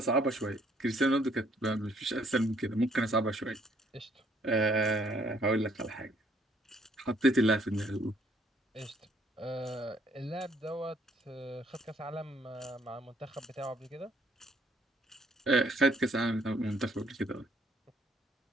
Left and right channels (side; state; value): both; normal; correlation 0.66